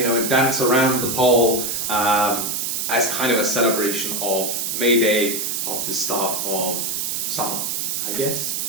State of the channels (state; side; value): noise; right; hiss, 1 dB below the sound